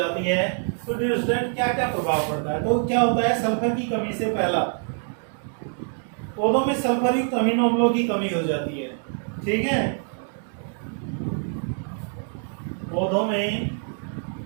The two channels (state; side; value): silent; left; 56 dB below the other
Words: है तो डियर स्टूडेंट क्या क्या प्रभाव पड़ता है। तो क्या होता है, सल्फर की कमी से पहला पौधों में सल्फर युक्त अमीनो अम्लों की कमी हो जाती है। ठीक है। पौधों में